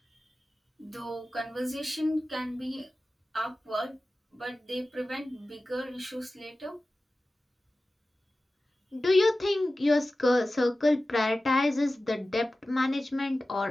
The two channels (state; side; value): normal; both; correlation 0.96